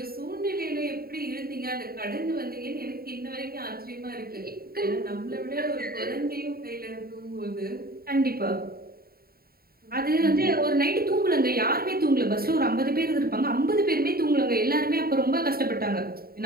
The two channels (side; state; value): left; late; 0.44 ms